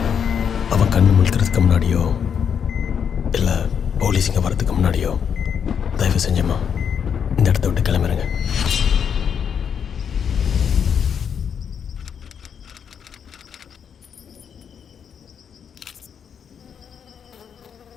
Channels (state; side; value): quieter; right; 7.5 dB